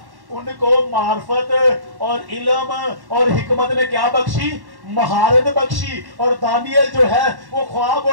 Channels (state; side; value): late; left; 1.1 ms